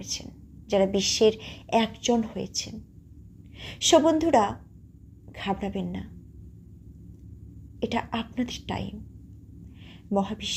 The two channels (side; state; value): both; identical; correlation 1.00